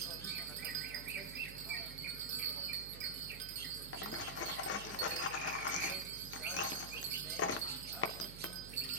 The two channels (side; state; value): right; noise; hum, 12 dB below the sound